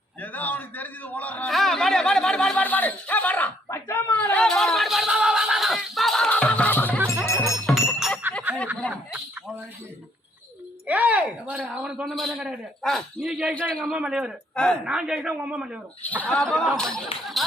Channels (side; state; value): both; normal; correlation 0.67